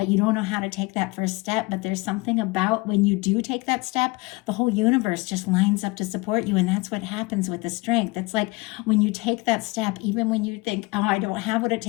you don't know how to take that first step. But there's something about when you do take that step, the whole universe just lines up to support you. And that's what happens with the strength. It's like when you take that step, even when you think, oh, I don't have what it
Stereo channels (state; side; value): quieter; right; 24.1 dB